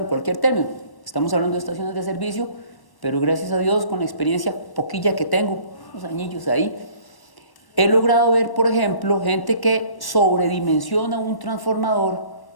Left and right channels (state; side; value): late; right; 1.1 ms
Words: cualquier término. Estamos hablando de estaciones de servicio, pero gracias a Dios, con la experiencia poquilla que tengo, unos añillos ahí, he logrado ver, por ejemplo, gente que sobredimensiona un transformador,